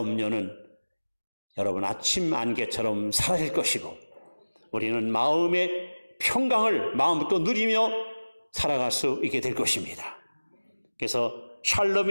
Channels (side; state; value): both; inverted; correlation -1.00